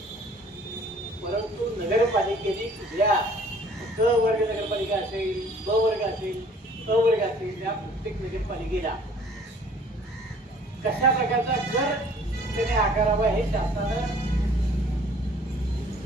परंतु नगरपालिकेने कुठल्या क वर्ग नगरपालिका असेल, ब वर्ग असेल, अ वर्ग असेल, त्या प्रत्येक नगरपालिकेला कशा प्रकारचा कर त्याने आकारावा हे शासनानं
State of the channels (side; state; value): both; normal; correlation 0.54